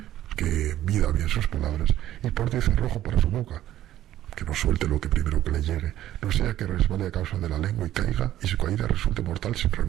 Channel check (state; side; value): quieter; left; 13.0 dB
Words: que mida bien sus palabras, y porte cerrojo para su boca, que no suelte lo que primero que le llegue, no sea que resbale a causa de la lengua y caiga, y su caída resulte mortal sin